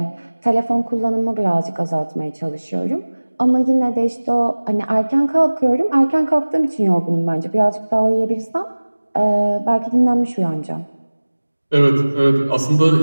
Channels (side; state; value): both; inverted; correlation -1.00